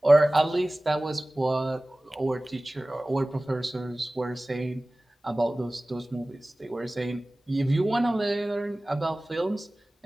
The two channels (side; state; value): both; normal; correlation 0.98